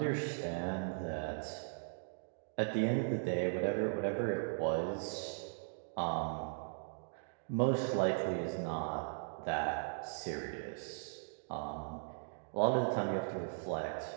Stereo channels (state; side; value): silent; left; digital silence